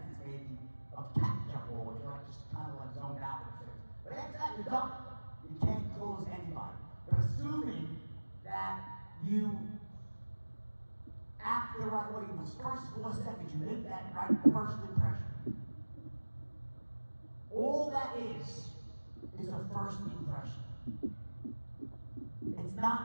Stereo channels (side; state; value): both; inverted; correlation -1.00